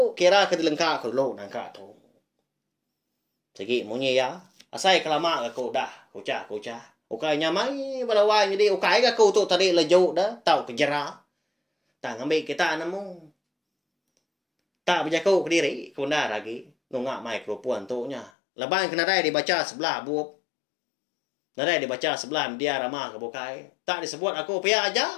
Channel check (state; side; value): drops out; right; at 18.3 s